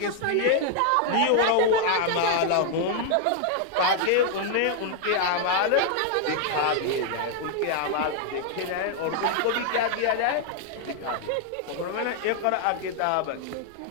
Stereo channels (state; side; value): different; both; correlation 0.00